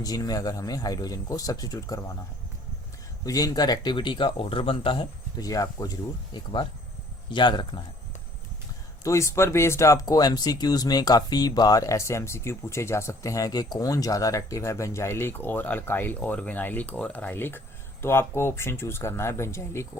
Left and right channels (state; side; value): normal; both; correlation 0.56